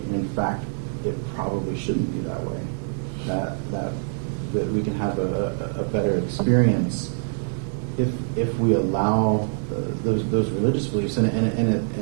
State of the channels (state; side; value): silent; left; digital silence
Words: And in fact, it probably shouldn't be that way. That we can have a better experience if we allow those religious beliefs, and